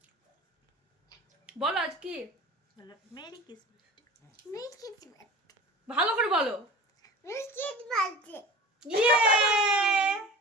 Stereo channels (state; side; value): normal; both; correlation 0.36